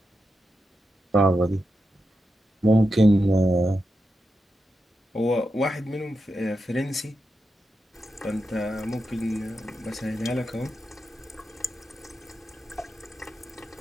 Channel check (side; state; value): both; normal; correlation 0.88